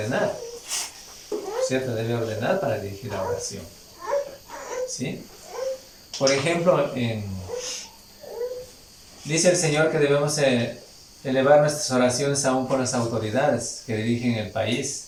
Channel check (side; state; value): both; identical; correlation 1.00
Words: ¿Cierto? Debe ordenar para dirigir la oración. ¿Sí? Por ejemplo, dice el Señor que debemos elevar nuestras oraciones aún por las autoridades que dirigen el